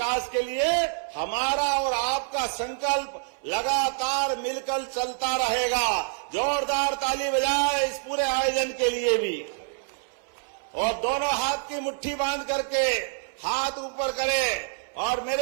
के लिए हमारा और आपका संकल्प लगातार मिलकर चलता रहेगा। जोरदार ताली बजाए इस पूरे आयोजन के लिए भी। और दोनों हाथ की मुट्ठी बांध करके हाथ ऊपर करें और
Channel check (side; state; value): left; silent; 60 dB below the other